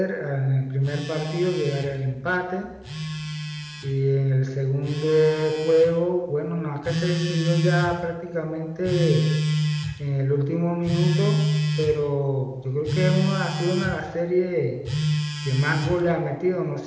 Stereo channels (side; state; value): both; identical; correlation 1.00